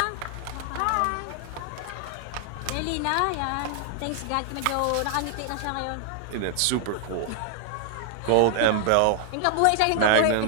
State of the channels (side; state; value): both; different; correlation 0.00